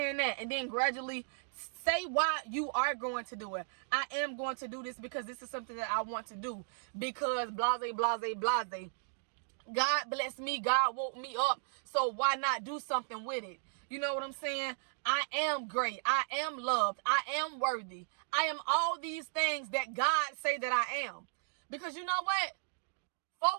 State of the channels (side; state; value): left; silent; digital silence